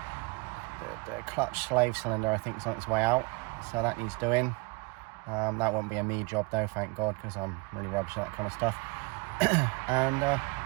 clutch slave cylinder I think is on its way out, so that needs doing. That won't be a me job though, thank God, because I'm really rubbish at that kind of stuff.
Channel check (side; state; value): left; quieter; 28.4 dB